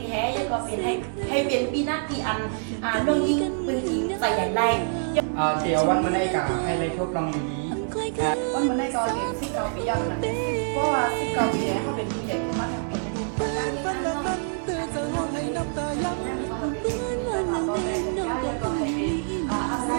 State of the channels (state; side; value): silent; left; digital silence